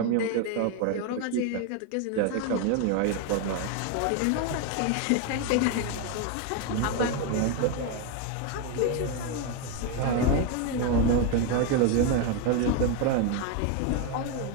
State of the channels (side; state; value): both; different; correlation 0.01